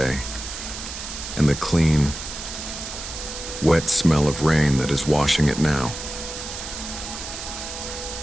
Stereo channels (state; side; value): noise; right; hiss, 8 dB below the sound